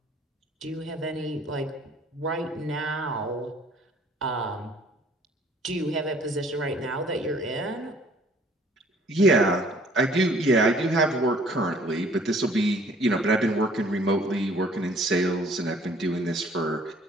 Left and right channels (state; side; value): normal; both; correlation 0.56